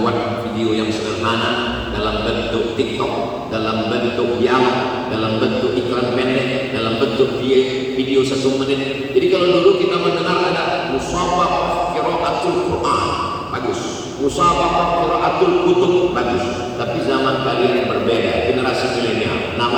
video yang sederhana dalam bentuk TikTok, dalam bentuk dialog, dalam bentuk iklan pendek, dalam bentuk video 1 menit. Jadi kalau dulu kita mendengar ada musabaqah qiraatul Quran, bagus. Musabaqah qiraatul kutub, bagus. Tapi zaman kalian berbeda, generasi milenial.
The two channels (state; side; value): identical; both; correlation 1.00